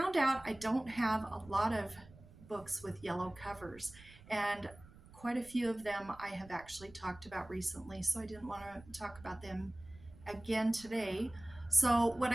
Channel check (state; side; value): noise; right; rumble, 21 dB below the sound